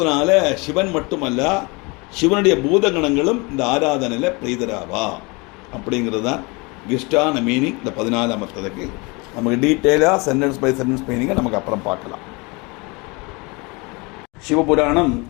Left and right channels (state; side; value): quieter; right; 27.5 dB